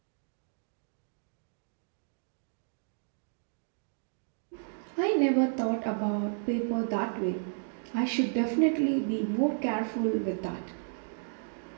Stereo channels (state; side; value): silent; left; digital silence